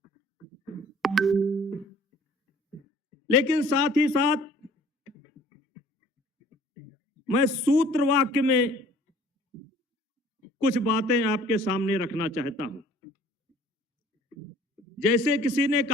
लेकिन साथ ही साथ मैं सूत्र वाक्य में कुछ बातें आपके सामने रखना चाहता हूं। जैसे किसी ने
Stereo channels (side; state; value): both; normal; correlation 0.52